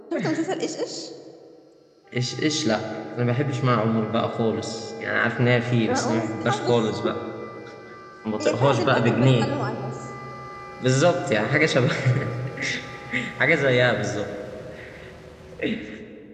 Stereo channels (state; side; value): identical; both; correlation 1.00